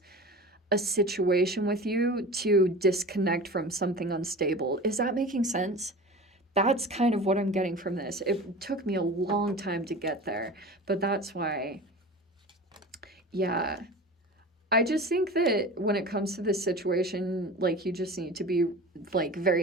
a situation with you to disconnect from something unstable. Is that making sense? That's kind of what I'm getting from this. It took me a long time to get there, but that's why. Yeah. I just think that when it comes to this situation, like, you just need to be like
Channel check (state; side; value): normal; both; correlation 0.35